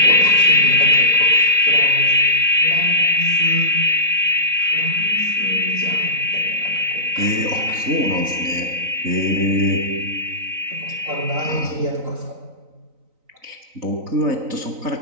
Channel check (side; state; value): left; late; 3.9 ms